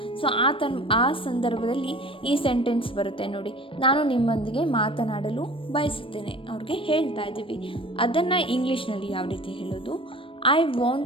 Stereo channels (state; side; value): late; right; 0.25 ms